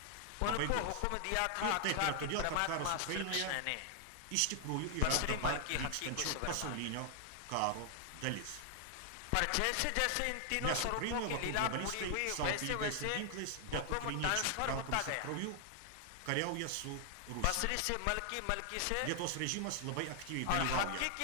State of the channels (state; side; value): different; both; correlation 0.00